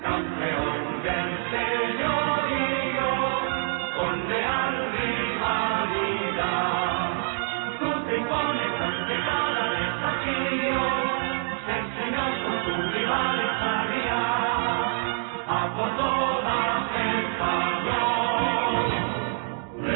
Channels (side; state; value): left; silent; digital silence